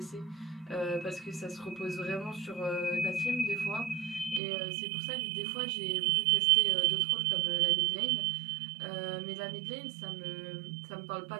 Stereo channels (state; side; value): drops out; left; at 4.4 s